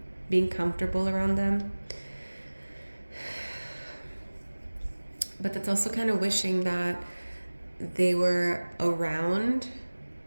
being comfortable around them. But that's also kind of wishing that they were around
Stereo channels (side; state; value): both; inverted; correlation -1.00